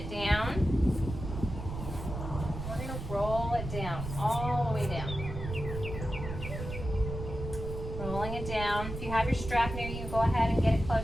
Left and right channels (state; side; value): noise; right; rumble, 7 dB below the sound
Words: down. We're going to roll it down, all the way down. Rolling it down. If you have your strap near you, go ahead and get it